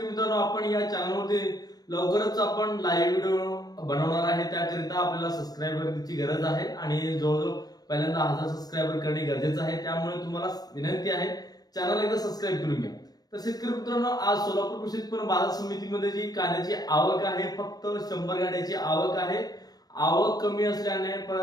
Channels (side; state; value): right; late; 0.19 ms